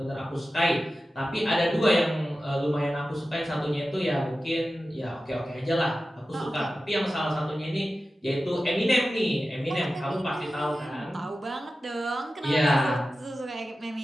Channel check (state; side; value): normal; both; correlation 0.94